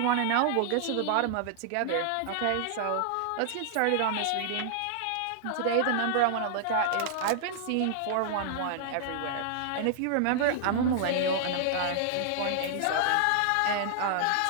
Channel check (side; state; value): both; different; correlation -0.01